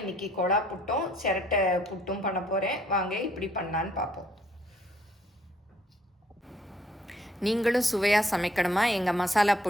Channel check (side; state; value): both; normal; correlation 0.64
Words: இன்றைக்கி கொழா புட்டும் சிரட்டை புட்டும் பண்ண போகிறேன். வாங்க இப்படி பண்ணலான்னு பார்ப்போம். நீங்களும் சுவையாக சமைக்கணுமா? எங்கள் மசாலா